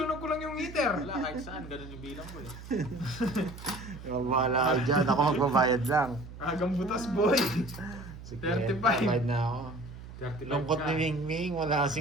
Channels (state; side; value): noise; right; hum, 14 dB below the sound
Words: ko lang yung heater. Wala, kahit saan. Ganun yung bilang ko eh. Bahala ka dyan, ako magbabayad lang. Agang butas boy. Sige, 35. bayad na ako. 35 Lungkot ka. ni Mingming, wala